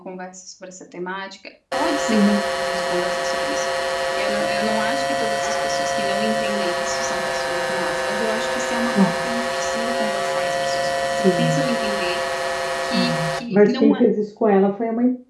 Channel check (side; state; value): both; identical; correlation 1.00